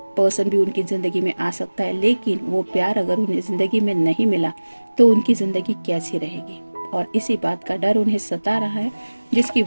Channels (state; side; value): inverted; both; correlation -1.00